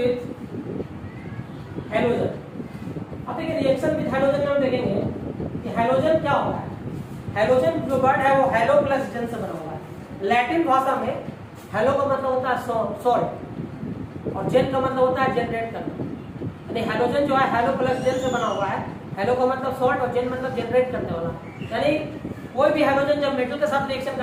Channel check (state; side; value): identical; both; correlation 1.00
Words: halogen, अब देखिए रिएक्शन विथ हैलोजन में हम देखेंगे कि हैलोजन क्या होता है। हैलोजन जो वर्ड है वो हैलो प्लस जन से बना हुआ है। लैटिन भाषा में हैलो का मतलब होता है सॉल्ट और जेन का मतलब होता है जनरेट करना। यानी हैलोजन जो है हैलो प्लस जेन से बना हुआ है। हैलो का मतलब सॉल्ट और जेन मतलब जनरेट करने वाला। यानी कोई भी हैलोजन जब मेटल के साथ रिएक्शन